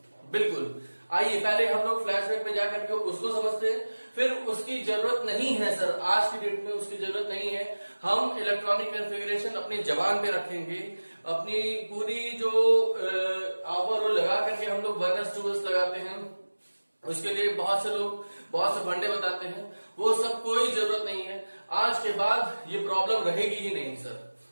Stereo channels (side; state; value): both; inverted; correlation -1.00